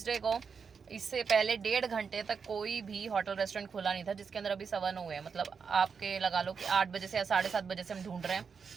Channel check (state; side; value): quieter; left; 5.9 dB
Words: को इससे पहले 1.5 घंटे तक कोई भी होटल रेस्टोरेंट खुला नहीं था, जिसके अंदर अभी 9:15 हुए हैं। मतलब आपके लगा लो कि 8 बजे से या 7:30 बजे से हम ढूंढ रहे हैं,